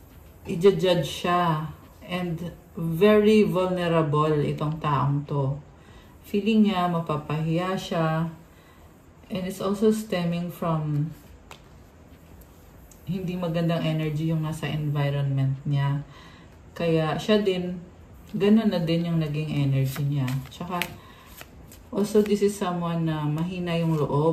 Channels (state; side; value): identical; both; correlation 1.00